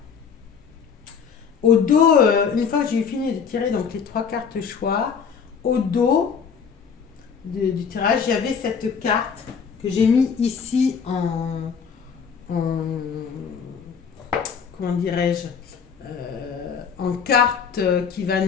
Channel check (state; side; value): quieter; right; 6.5 dB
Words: Au dos, une fois que j'ai fini de tirer donc, les 3 cartes choix, au dos du tirage, il y avait cette carte que j'ai mis ici en comment dirais-je, en carte qui va